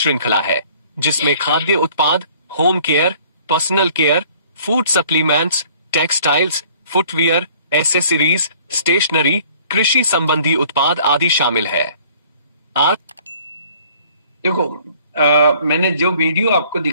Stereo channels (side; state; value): both; inverted; correlation -0.55